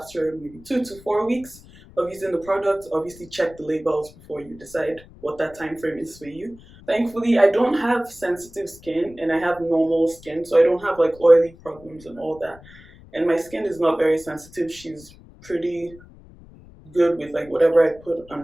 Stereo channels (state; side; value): noise; left; rumble, 22 dB below the sound